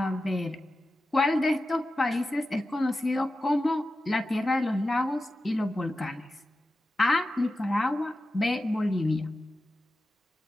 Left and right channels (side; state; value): both; normal; correlation 0.93